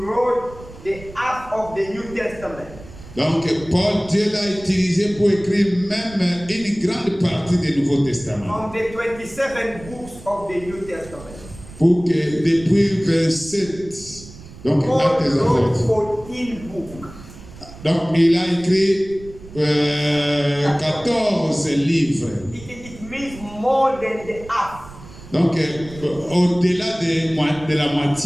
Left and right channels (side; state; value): right; noise; rumble, 18 dB below the sound